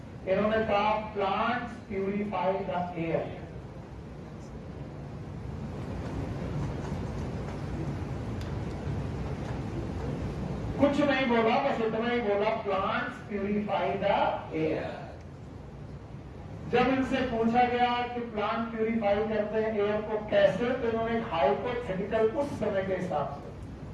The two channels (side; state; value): both; identical; correlation 1.00